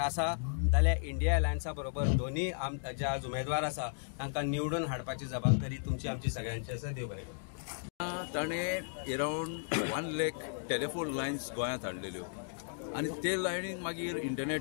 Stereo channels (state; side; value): silent; right; digital silence